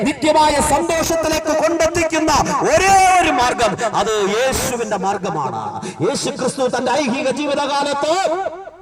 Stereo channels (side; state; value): both; identical; correlation 1.00